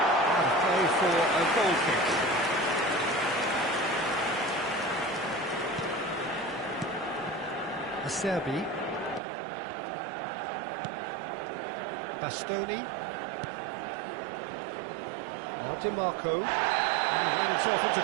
And a play for a goal kick. Acerbi. Bastoni. Now DiMarco. He ran himself into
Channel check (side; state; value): left; drops out; at 9.2 s